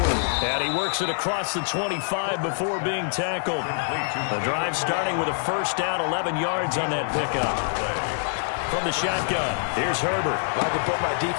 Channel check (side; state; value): right; silent; 62 dB below the other